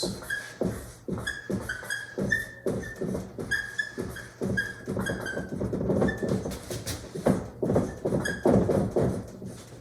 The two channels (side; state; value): both; identical; correlation 1.00